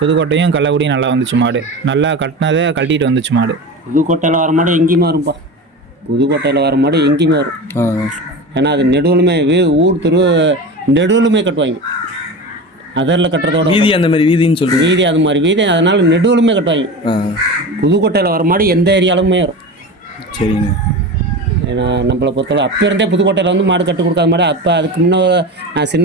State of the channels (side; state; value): both; normal; correlation 0.28